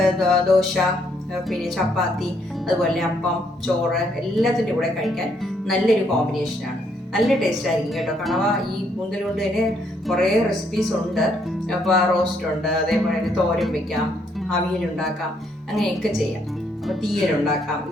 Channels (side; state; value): both; normal; correlation 0.71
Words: ദോശ, പിന്നെ ചപ്പാത്തി, അതുപോലെ അപ്പം, ചോറ് എല്ലാത്തിൻ്റെ കൂടെ കഴിക്കാൻ നല്ലൊരു കോമ്പിനേഷനാണ്. നല്ല ടേസ്റ്റ് ആയിരിക്കും കേട്ടോ. കണവ ഈ കൂന്തൽ കൊണ്ട് തന്നെ കുറേ റെസിപ്പീസ് ഉണ്ട്. അപ്പോൾ റോസ്റ്റ് ഉണ്ട്, അതേപോലെ തന്നെ തോരൻ വെക്കാം, അവിയലുണ്ടാക്കാം, അങ്ങനെയൊക്കെ ചെയ്യാം. അപ്പോൾ തീയലുണ്ടാക്കാം,